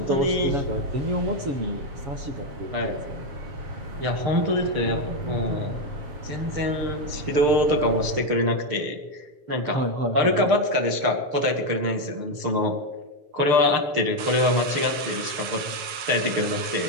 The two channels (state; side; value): late; left; 6.7 ms